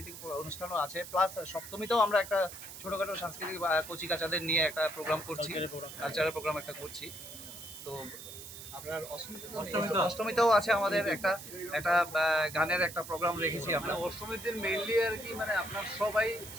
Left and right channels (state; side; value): noise; right; hiss, 12 dB below the sound